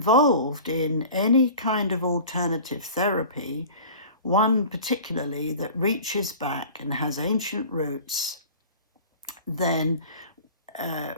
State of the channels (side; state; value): both; inverted; correlation -0.40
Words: in any kind of alternative therapy, one particularly that reaches back and has ancient roots, then